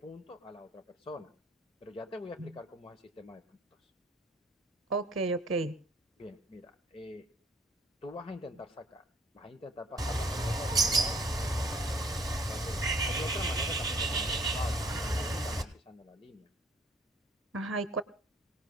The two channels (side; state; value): both; normal; correlation 0.59